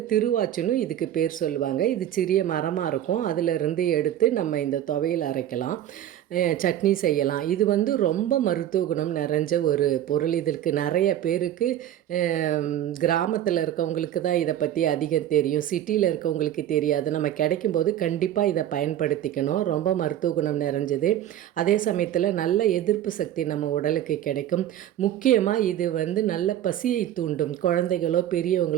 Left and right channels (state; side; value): quieter; left; 11.6 dB